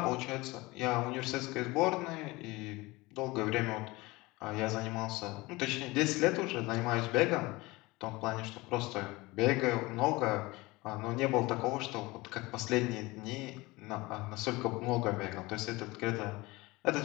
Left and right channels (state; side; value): quieter; right; 21.9 dB